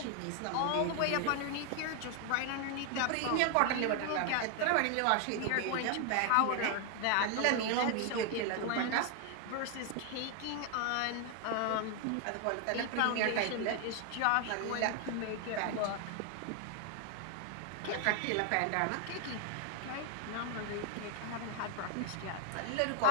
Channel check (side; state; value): both; different; correlation 0.00